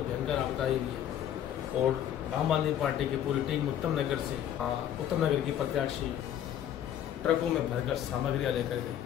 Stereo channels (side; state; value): right; quieter; 10.5 dB